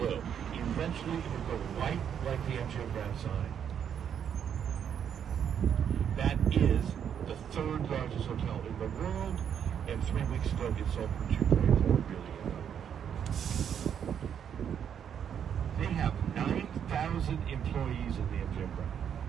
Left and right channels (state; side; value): quieter; left; 8.5 dB